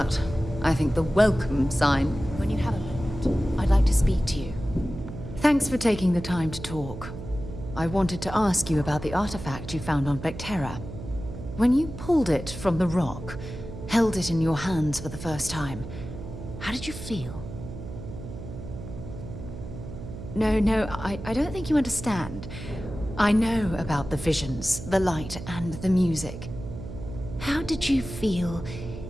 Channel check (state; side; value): noise; right; hum, 10 dB below the sound